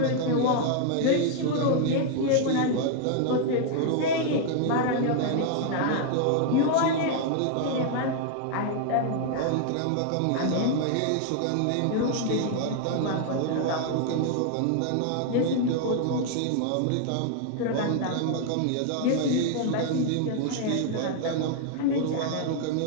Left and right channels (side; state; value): both; different; correlation 0.00